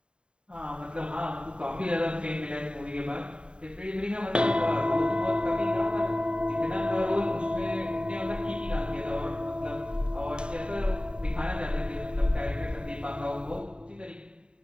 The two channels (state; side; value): late; left; 0.051 ms